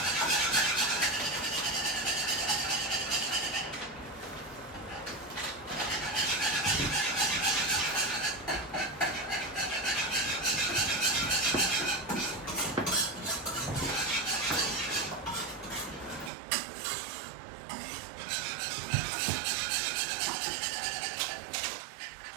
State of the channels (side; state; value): left; drops out; at 16.3 s